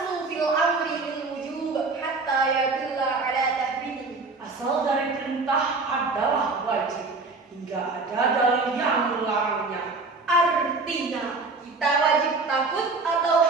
fil amri lil wujub hatta yadulla ala tahrim. Asal dari perintah adalah wajib hingga ada dalil yang melarangnya. Artinya, kita wajib takut atau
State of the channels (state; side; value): quieter; left; 3.8 dB